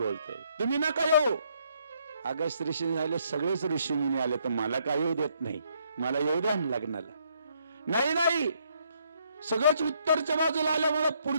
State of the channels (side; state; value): both; inverted; correlation -0.71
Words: तुम्ही नका येऊ. अगस्त्य ऋषी झाले, सगळेच ऋषी मुनी आले, तर मला काय येऊ देत नाही, मला येऊ द्या लग्नाला. नाही, सगळेच उत्तरच्या बाजूला आल्यामुळे